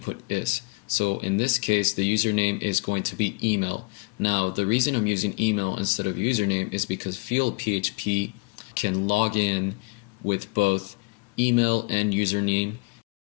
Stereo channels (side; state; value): right; quieter; 29.1 dB